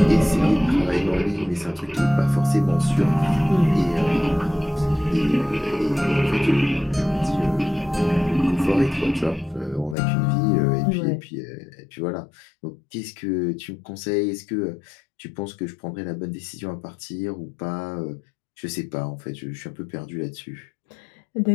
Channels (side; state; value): right; drops out; at 10.0 s